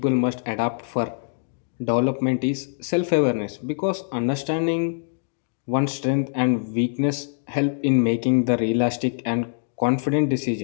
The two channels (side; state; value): right; silent; digital silence